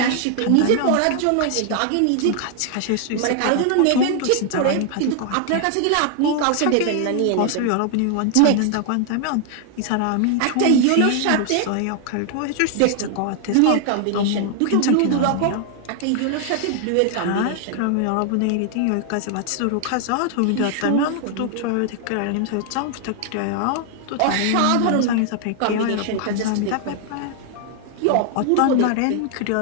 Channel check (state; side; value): different; both; correlation 0.00